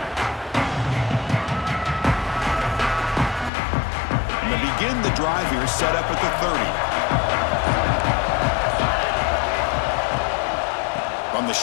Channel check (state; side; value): drops out; right; at 3.5 s